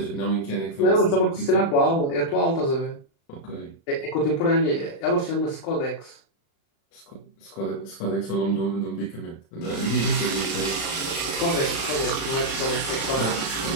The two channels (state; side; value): late; right; 36 ms